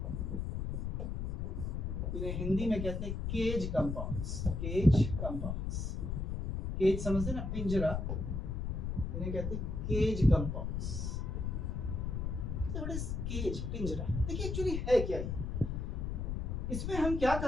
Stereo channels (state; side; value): noise; left; rumble, 2 dB below the sound